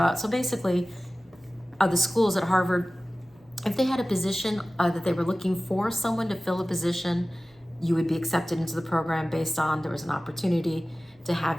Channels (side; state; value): both; normal; correlation 0.97